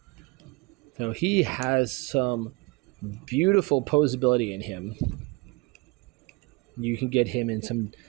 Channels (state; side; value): quieter; left; 25.8 dB